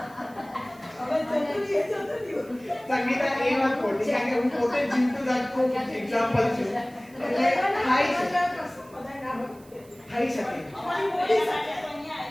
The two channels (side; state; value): right; noise; hiss, 26 dB below the sound